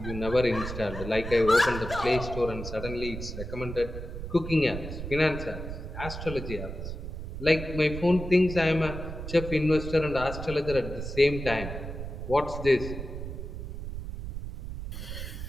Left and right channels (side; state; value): right; noise; rumble, 7 dB below the sound